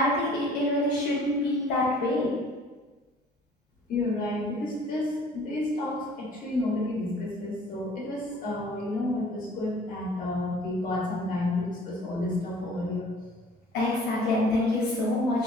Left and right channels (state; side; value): normal; both; correlation 0.52